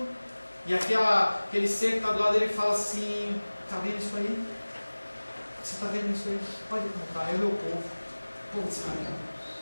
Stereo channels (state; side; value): inverted; both; correlation -1.00